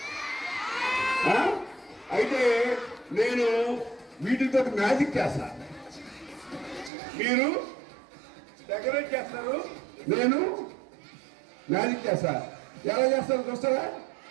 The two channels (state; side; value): drops out; left; at 6.9 s